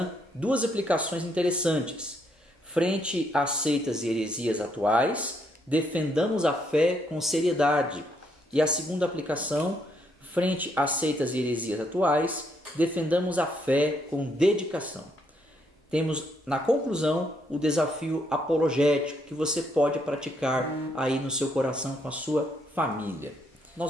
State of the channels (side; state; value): both; normal; correlation 0.74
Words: 2 aplicações interessantes. Frente às seitas e heresias atuais, defendamos a fé com seriedade. E a segunda aplicação, frente às seitas e heresias atuais, defendamos a fé com dedicação. Temos, na conclusão, o desafio apologético que você pode praticar aí no seu coração com a sua família.